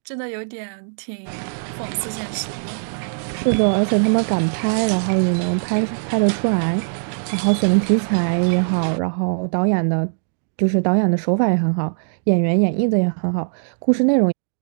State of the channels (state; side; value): silent; left; digital silence